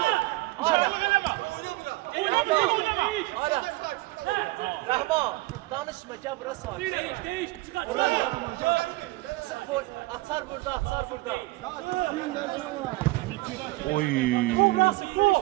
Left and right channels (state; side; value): quieter; left; 20.5 dB